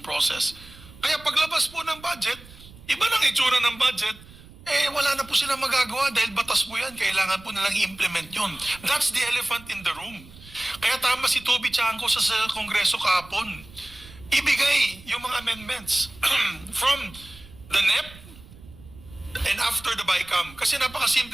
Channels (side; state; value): right; noise; rumble, 20 dB below the sound